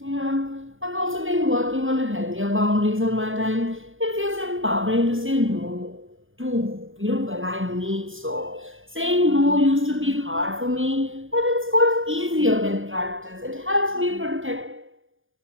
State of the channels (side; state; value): left; late; 0.58 ms